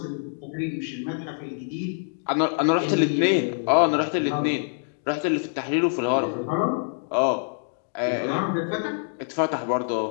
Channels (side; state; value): right; silent; digital silence